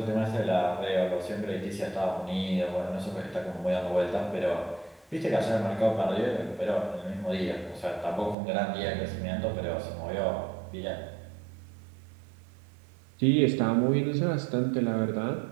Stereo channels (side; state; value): left; drops out; at 8.3 s